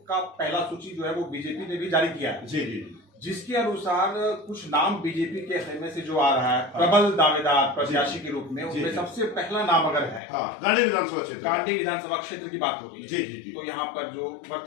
का पहला सूची जो है वो बीजेपी ने भी जारी किया है। जी जी, जिसके अनुसार कुछ नाम बीजेपी के खेमे से जो आ रहा है प्रबल दावेदार प्रत्याशी के रूप में, उसमें सबसे पहला नाम अगर है गांडे विधानसभा क्षेत्र, गांडी विधानसभा क्षेत्र की बात हो रही है। जी जी जी। तो यहाँ पर जो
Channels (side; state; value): right; drops out; at 10.2 s